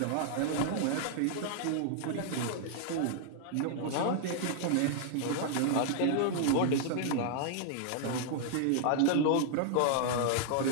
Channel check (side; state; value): both; different; correlation -0.01